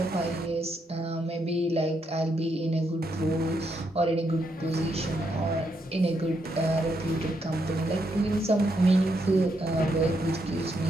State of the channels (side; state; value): both; normal; correlation 0.78